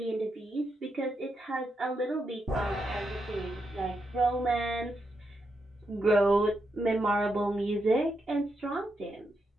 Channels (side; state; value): both; normal; correlation 0.83